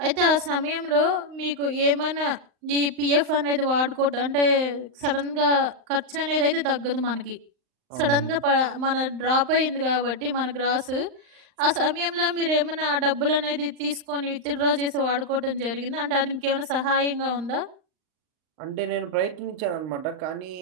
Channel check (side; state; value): left; late; 39 ms